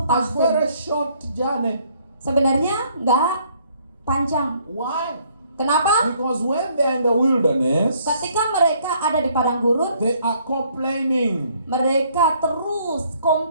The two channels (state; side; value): inverted; both; correlation -0.65